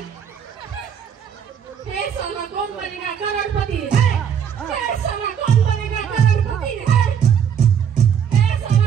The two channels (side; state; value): left; quieter; 8.1 dB